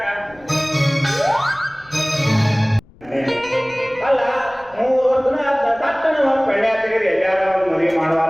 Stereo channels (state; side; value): noise; left; rumble, 26 dB below the sound